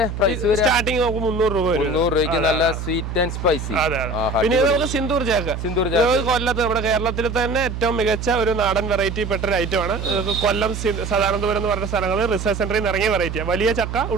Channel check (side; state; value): right; noise; hum, 6 dB below the sound